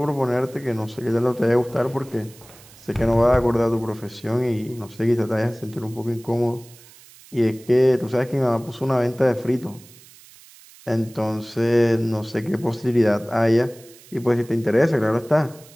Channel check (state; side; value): noise; right; hiss, 23 dB below the sound